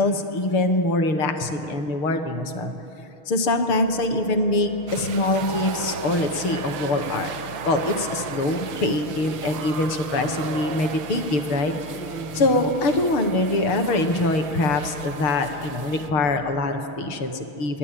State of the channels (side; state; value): right; late; 6.4 ms